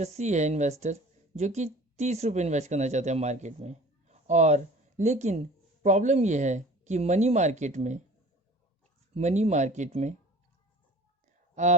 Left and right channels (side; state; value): both; normal; correlation 0.45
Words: सी है इन्वेस्टर जो कि 30 रुपये इन्वेस्ट करना चाहते हैं मार्केट में। और लेकिन प्रॉब्लम यह है कि मनी मार्केट में